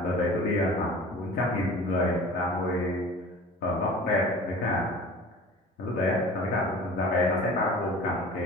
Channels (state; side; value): normal; both; correlation 0.42